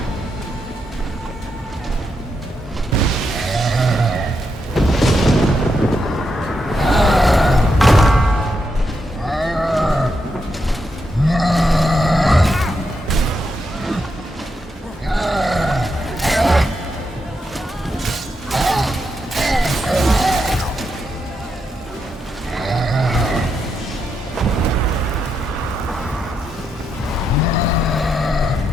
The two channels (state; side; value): normal; both; correlation 0.82